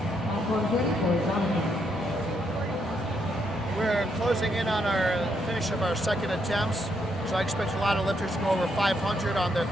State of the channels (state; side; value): normal; both; correlation 0.76